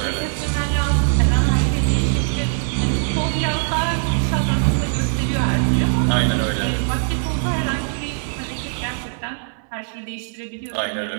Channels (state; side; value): silent; left; 65 dB below the other